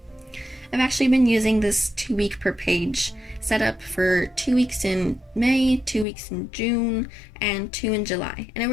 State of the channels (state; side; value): drops out; right; at 6.1 s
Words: I've actually been using this 2-week per page setup for 2 weeks in May, 2 weeks in June, and 2 in July, and it